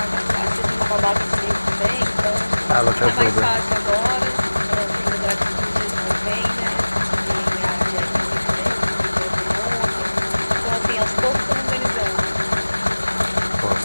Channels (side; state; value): both; inverted; correlation -1.00